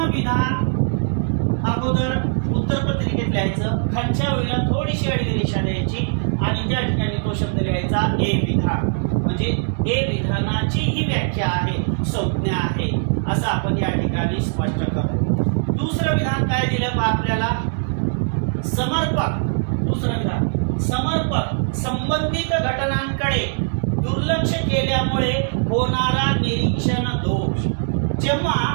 विधान अगोदर उत्तरपत्रिकेत लिहायचं, खालच्या ओळीला थोडीशी आडवी रेषा द्यायची आणि त्या ठिकाणी तो शब्द लिहायचा ए विधान. म्हणजे ए विधानाची ही व्याख्या आहे, संज्ञा आहे असं आपण या ठिकाणी स्पष्ट करतो. दुसरं विधान काय दिलं आपल्याला? समर्पक. दुसरं विधान समर्पक संबंधित घटनांकडे दुर्लक्ष केल्यामुळे होणारा निरीक्षण दोष. जेव्हा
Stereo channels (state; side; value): silent; left; digital silence